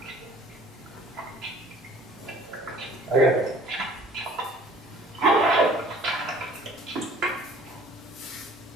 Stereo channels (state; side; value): normal; both; correlation 0.52